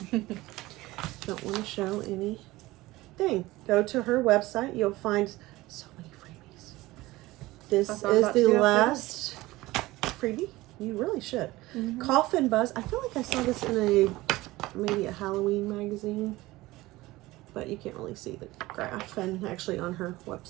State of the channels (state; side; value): quieter; left; 19.0 dB